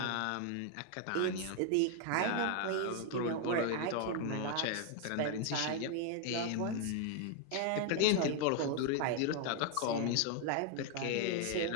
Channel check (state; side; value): different; both; correlation 0.00